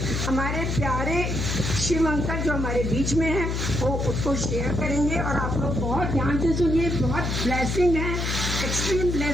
हमारे प्यारे शिव अंकल जो हमारे बीच में हैं वो उसको शेयर करेंगे और आप लोग बहुत ध्यान से सुनिए। बहुत ब्लेसिंग है, एक्सट्रीम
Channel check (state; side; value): noise; left; hum, 1 dB below the sound